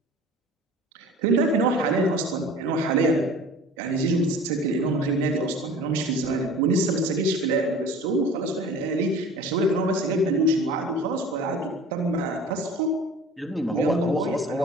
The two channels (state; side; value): normal; both; correlation 0.42